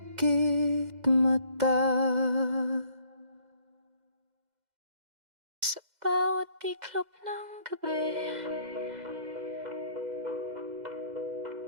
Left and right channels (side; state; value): left; late; 2.0 ms